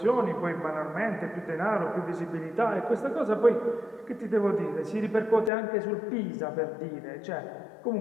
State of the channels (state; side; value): drops out; right; at 5.5 s